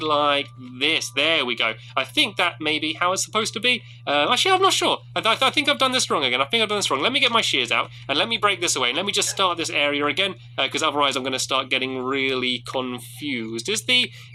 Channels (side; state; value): both; identical; correlation 1.00